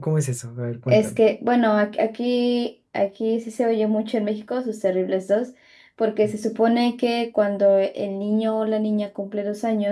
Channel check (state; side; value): identical; both; correlation 1.00